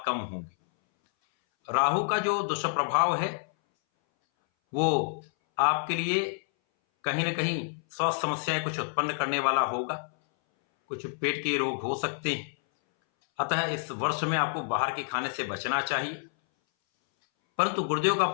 कम होंगे। राहु का जो दुष्प्रभाव है वो आपके लिए कहीं ना कहीं स्वास्थ्य समस्याएं कुछ उत्पन्न करने वाला होगा, कुछ पेट के रोग हो सकते हैं। अतः इस वर्ष में आपको बाहर के खाने से बचना चाहिए। परंतु गुरुदेव का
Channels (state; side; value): silent; right; 59 dB below the other